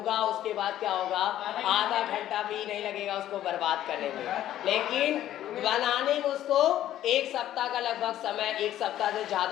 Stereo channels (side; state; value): right; quieter; 12.5 dB